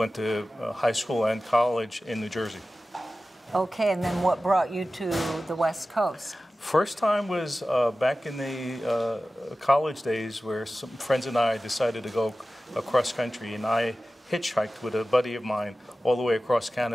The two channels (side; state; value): both; normal; correlation 0.95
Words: to high school and college in New Jersey. Okay, and then what brought you to the West Coast? First time was back in the college days, where some friends and I decided to go across country, and I hitchhiked with a buddy of mine all the way across